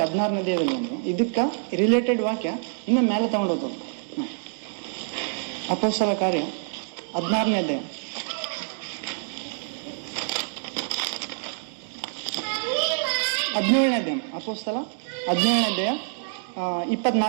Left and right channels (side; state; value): left; silent; digital silence